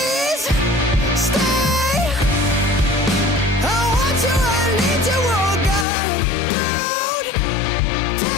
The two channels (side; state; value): right; drops out; at 5.9 s